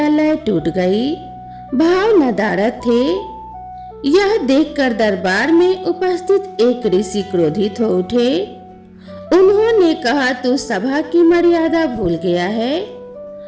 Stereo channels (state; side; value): identical; both; correlation 1.00